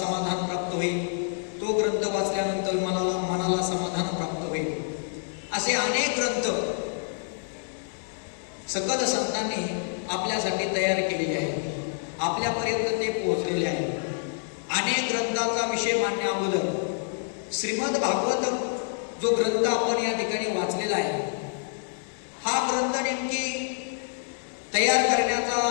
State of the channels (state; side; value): silent; right; digital silence